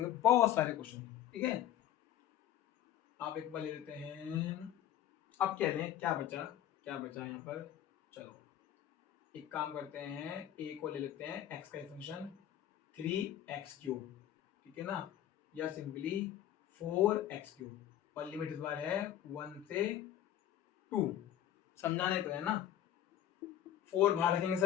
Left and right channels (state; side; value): quieter; right; 11.5 dB